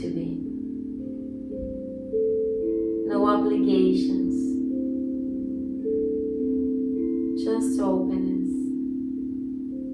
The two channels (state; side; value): identical; both; correlation 1.00